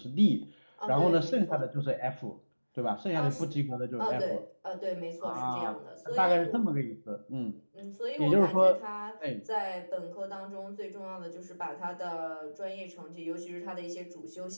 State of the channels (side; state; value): both; inverted; correlation -1.00